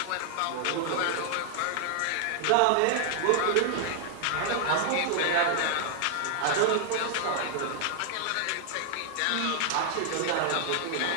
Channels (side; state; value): both; different; correlation 0.00